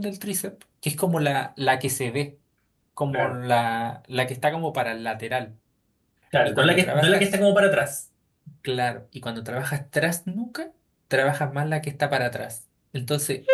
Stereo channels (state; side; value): identical; both; correlation 1.00